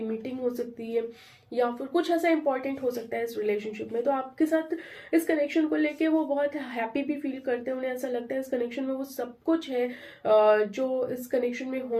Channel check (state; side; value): identical; both; correlation 1.00